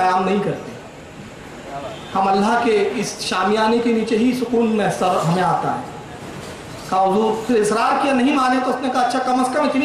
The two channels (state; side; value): identical; both; correlation 1.00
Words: नहीं करते, हम अल्लाह के इस शामियाने के नीचे ही सुकून में सर हमें आता है। कहा हुजूर, फिर इसरार किया, नहीं माने तो उसने कहा अच्छा कम अज़ कम इतनी